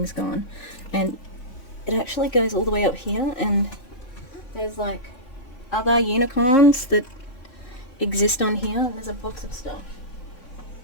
gone. And it actually goes all the way up here, and there's like other unicorns that exist on here. There's a box of stuff.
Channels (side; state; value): right; late; 3.6 ms